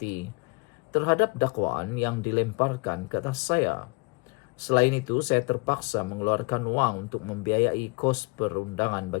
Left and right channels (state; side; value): quieter; right; 29.7 dB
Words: terhadap dakwaan yang dilemparkan ke atas saya. Selain itu, saya terpaksa mengeluarkan wang untuk membiayai kos perundangan